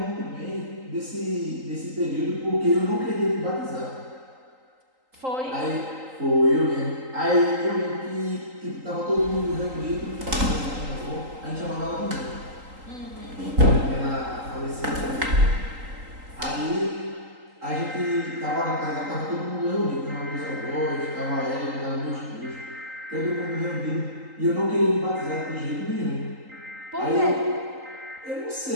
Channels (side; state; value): left; late; 3.8 ms